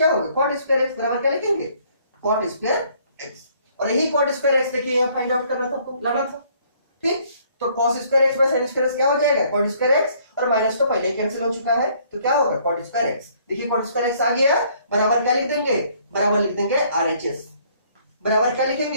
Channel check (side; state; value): both; inverted; correlation -0.62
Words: होगा? cot स्क्वायर x बराबर क्या लिखेंगे? cot square x। और यही cot स्क्वायर x देखिए यहाँ फाइंड आउट करना था आपको, लाना था। ठीक, तो cos square x by sin square x क्या हो जाएगा? cot square x। और माइनस तो पहले कैंसिल हो चुका है तो क्या होगा? cot square x। देखिए cot स्क्वायर x आ गया, बराबर क्या लिख देंगे? बराबर लिख देंगे RHS। बराबर क्या